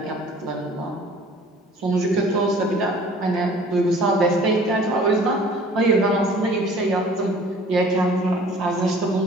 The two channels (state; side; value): normal; both; correlation 0.50